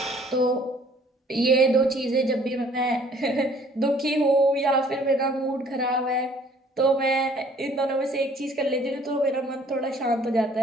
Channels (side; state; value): both; normal; correlation 0.57